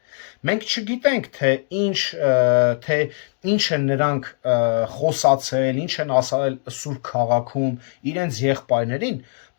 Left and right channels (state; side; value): silent; right; digital silence